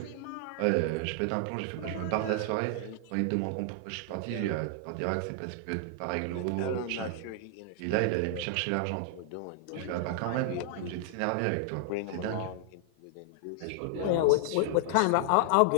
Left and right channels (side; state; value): both; different; correlation 0.00